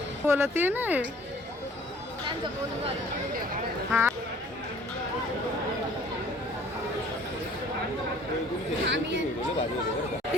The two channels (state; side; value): normal; both; correlation 0.54